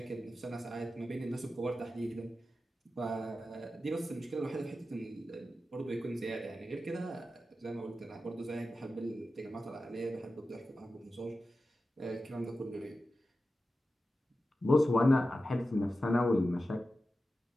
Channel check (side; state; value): both; normal; correlation 0.93